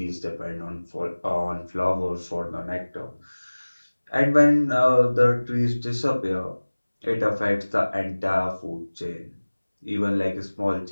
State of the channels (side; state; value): both; inverted; correlation -1.00